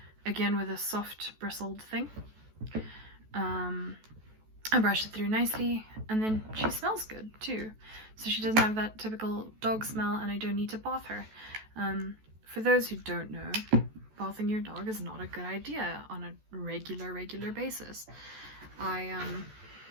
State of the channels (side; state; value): left; late; 14 ms